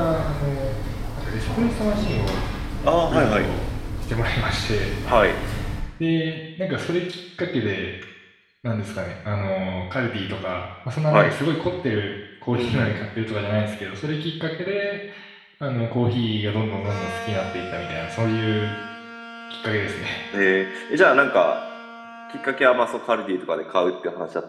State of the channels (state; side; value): identical; both; correlation 1.00